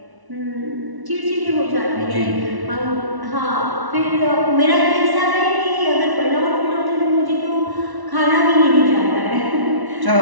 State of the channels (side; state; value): left; late; 1.1 ms